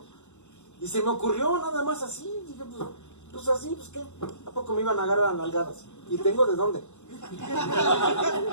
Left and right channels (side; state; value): right; late; 0.84 ms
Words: Y se me ocurrió nada más así, dije, pues así, pues qué, ¿a poco me iban a agarrar a nalgadas? Y tengo de dónde.